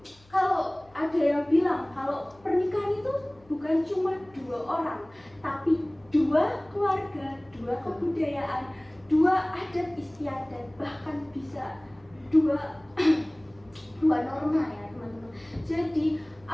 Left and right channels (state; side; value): noise; left; hum, 28 dB below the sound